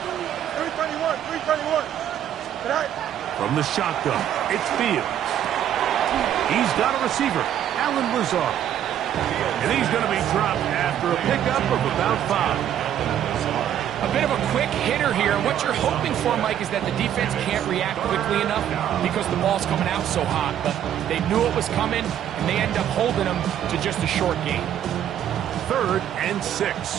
331, 331. Tonight. From the shotgun, it's Fields. He's got a receiver, Alan Lazard. And he's going to be dropped after a pickup of about 5. A bit of a quick hitter here. What you're hoping for, Mike, is that the defense can't react quickly enough because the ball's coming out so hot. But they knew it was coming, and they end up holding them to just a short gain. 3rd and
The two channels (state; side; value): quieter; left; 10.5 dB